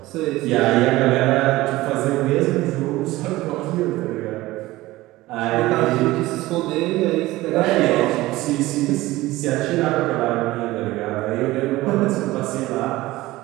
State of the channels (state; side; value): quieter; left; 18.2 dB